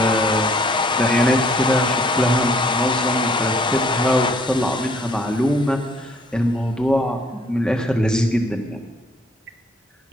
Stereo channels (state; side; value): normal; both; correlation 0.61